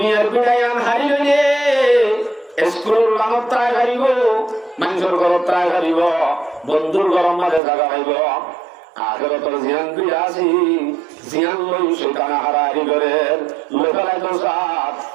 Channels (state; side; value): drops out; left; at 7.6 s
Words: বিড়া ইয়ান হারিলে স্কুলের লানত ত্রায় হারিব মানুষের ঘরত ত্রায় হারিব বন্ধুর ঘরের মাঝে জায়গা পাইব আখিরাতের জিয়ান বিড়া আছে জিয়ান লই শয়তান হারাই করে লোকালাই তো সাথ